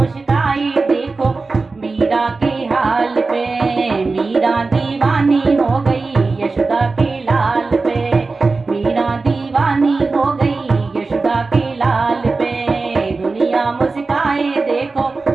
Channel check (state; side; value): quieter; left; 3.9 dB